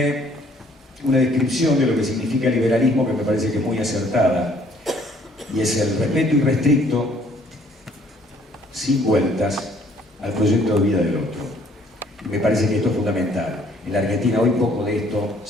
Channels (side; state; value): both; normal; correlation 0.62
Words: una descripción de lo que significa liberalismo que me parece que es muy acertada, y es el respeto irrestricto, sin vueltas, al proyecto de vida del otro. Y me parece que esto es fundamental. En la Argentina hoy poco de esto,